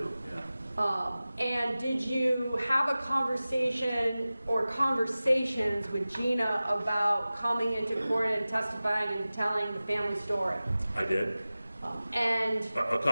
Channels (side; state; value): both; inverted; correlation -0.97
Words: yeah. And did you have a conversation or conversations with Gina about coming into court and testifying and telling the family story? I did. And a